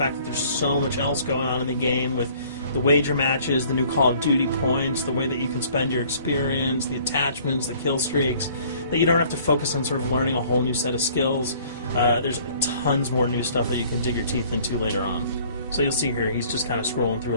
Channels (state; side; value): inverted; both; correlation -0.56